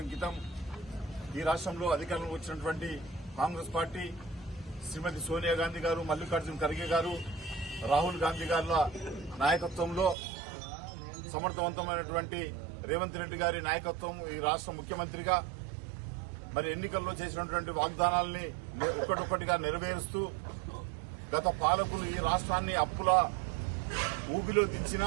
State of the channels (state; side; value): drops out; left; at 10.2 s